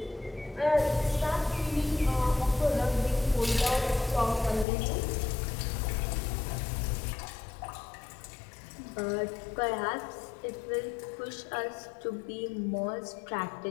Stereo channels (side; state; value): right; drops out; at 4.7 s